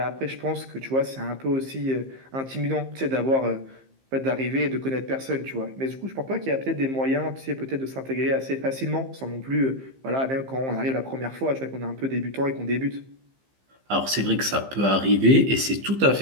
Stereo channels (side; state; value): left; late; 15 ms